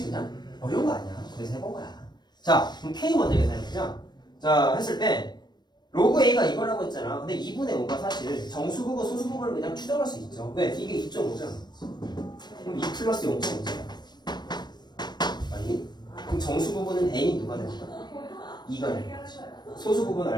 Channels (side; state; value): right; late; 0.21 ms